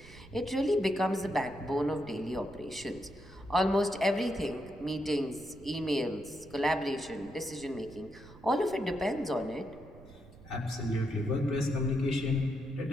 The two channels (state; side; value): noise; right; rumble, 20 dB below the sound